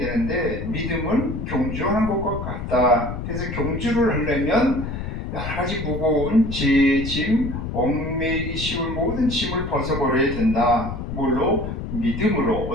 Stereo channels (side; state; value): left; noise; rumble, 6 dB below the sound